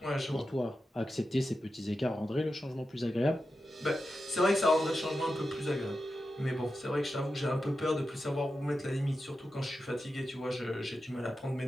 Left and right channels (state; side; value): normal; both; correlation 0.90